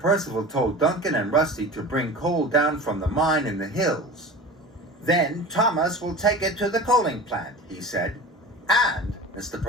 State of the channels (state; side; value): normal; both; correlation 0.35